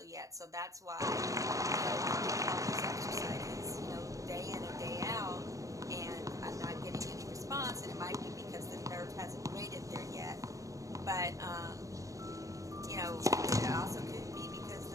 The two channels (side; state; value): left; late; 0.16 ms